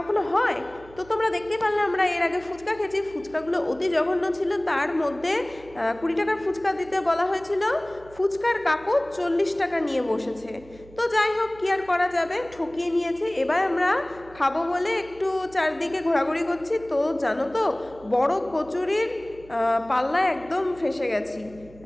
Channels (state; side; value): noise; right; hum, 22 dB below the sound